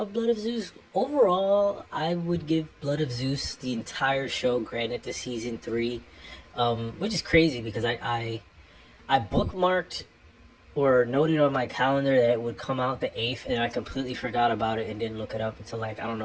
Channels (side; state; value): both; identical; correlation 1.00